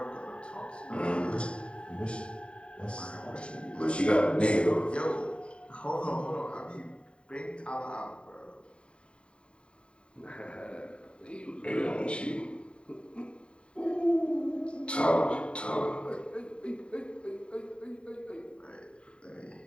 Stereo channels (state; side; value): late; right; 0.055 ms